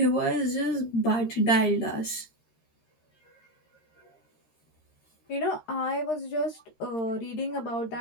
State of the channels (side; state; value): right; late; 13 ms